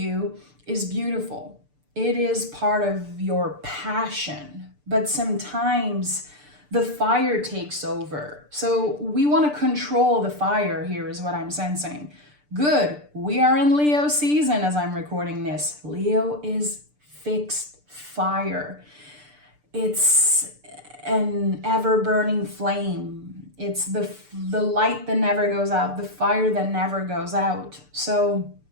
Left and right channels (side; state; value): left; late; 6.8 ms